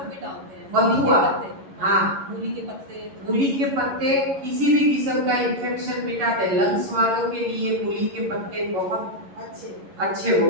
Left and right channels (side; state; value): left; late; 11 ms